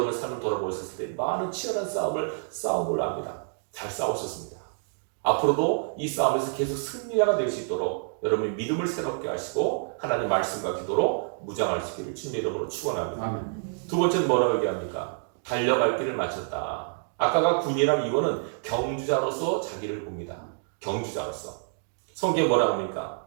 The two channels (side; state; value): left; silent; digital silence